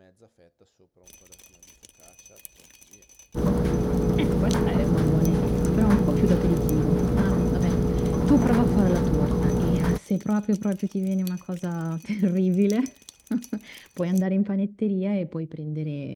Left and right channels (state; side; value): identical; both; correlation 1.00